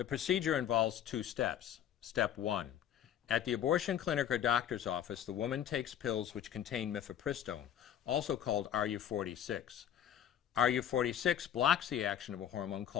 procedure involves 2 steps. Step 1. At the abortion clinic or doctor's office, the woman takes pills which contain mifepristone, also called RU46. RU46 blocks the action of a hormone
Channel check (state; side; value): quieter; right; 9.9 dB